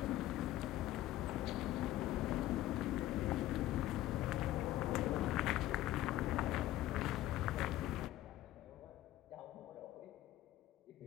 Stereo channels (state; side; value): quieter; right; 14.6 dB